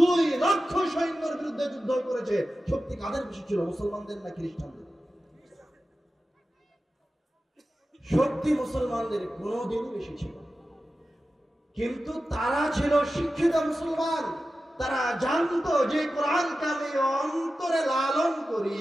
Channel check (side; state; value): both; normal; correlation 0.93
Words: লক্ষ সৈন্যের বিরুদ্ধে যুদ্ধ করেছে। শক্তি কাদের বেশি ছিল, মুসলমানদের না খ্রিস্টানদের? শক্তি মুসলমানদের কোনোদিনই বেশি ছিল। কিন্তু তারা ছিল শিক্ষিত মুসলমান। তারা জানতো যে কোরআনকে আমি অন্তরে লালন করি,